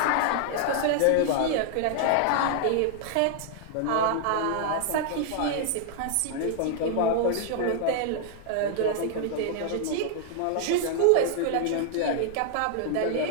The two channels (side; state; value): both; different; correlation -0.01